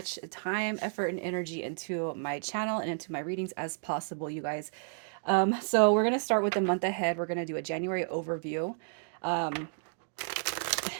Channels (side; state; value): left; silent; digital silence